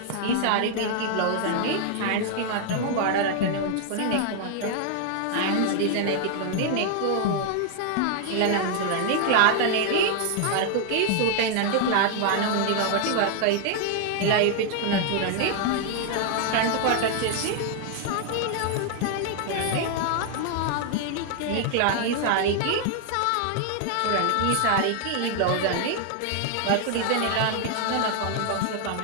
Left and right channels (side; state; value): both; different; correlation 0.00